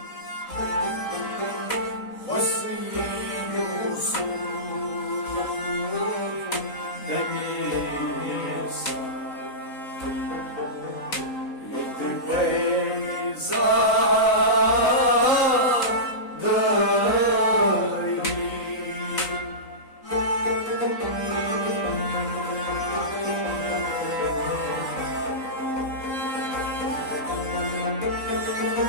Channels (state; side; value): late; right; 3.8 ms